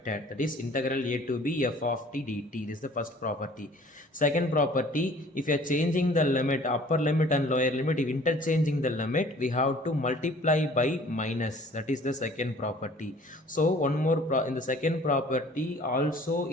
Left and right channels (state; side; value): normal; both; correlation 0.52